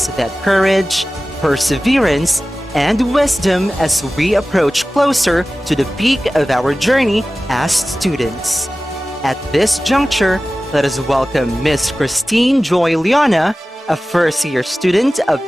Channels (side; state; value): both; normal; correlation 0.96